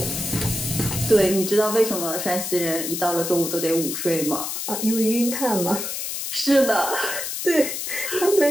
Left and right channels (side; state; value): left; noise; hiss, 4 dB below the sound